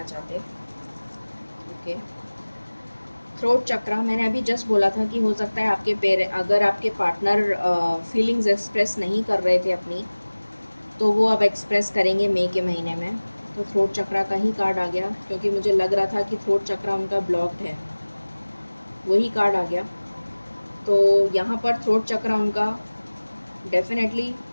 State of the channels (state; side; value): inverted; both; correlation -1.00